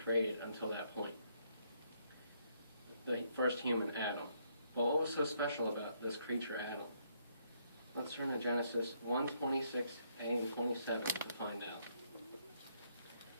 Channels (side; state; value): both; inverted; correlation -0.72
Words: until that point. The first human, Adam. Well, what was so special about this creature, Adam? Let's turn to Genesis 1:26a and 27 to find out.